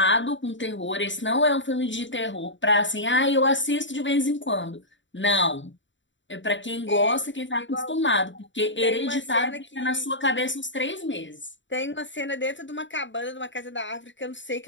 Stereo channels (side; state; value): right; late; 0.54 ms